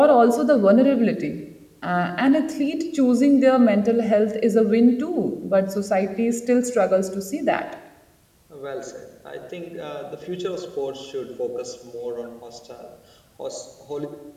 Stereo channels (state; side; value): identical; both; correlation 1.00